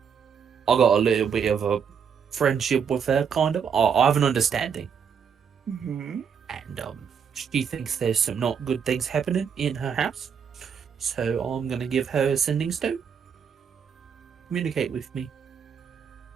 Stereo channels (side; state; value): left; quieter; 7.0 dB